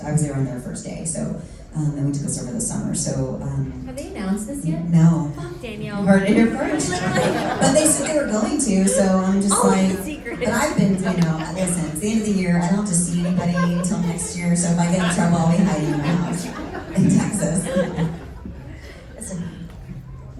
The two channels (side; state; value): both; identical; correlation 1.00